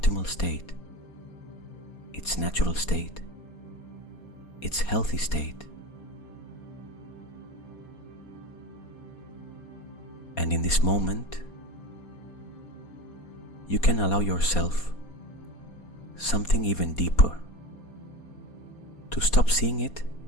state, its natural state, its healthy state. And in this moment, you can allow yourself something even deeper, to stop seeing it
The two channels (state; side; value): late; right; 4.2 ms